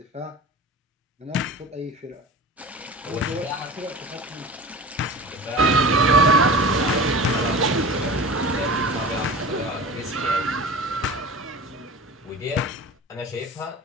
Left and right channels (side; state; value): both; normal; correlation 0.35